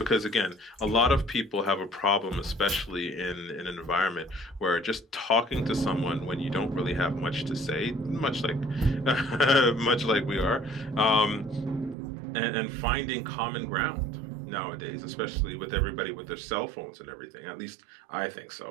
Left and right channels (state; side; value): drops out; left; at 12.0 s